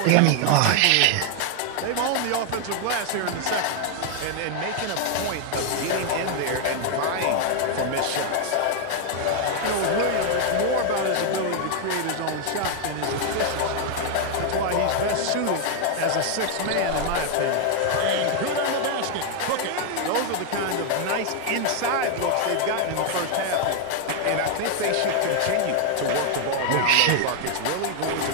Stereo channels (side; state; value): both; different; correlation 0.00